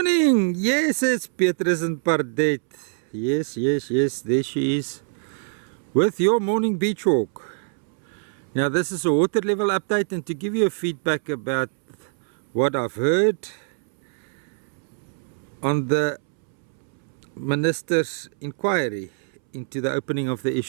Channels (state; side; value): silent; left; 63 dB below the other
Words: Yes, it's Petrus and Pardet. Yes, there she is with your morning beach walk. Now this is a water level update, and to give you a feedback about what I've heard on the Minister's inquiry into the opening of the